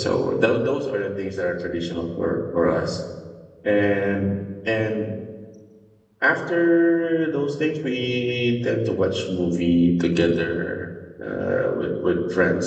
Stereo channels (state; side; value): identical; both; correlation 1.00